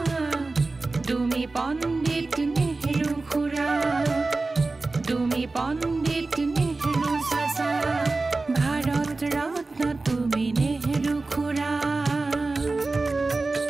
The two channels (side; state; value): left; quieter; 3.5 dB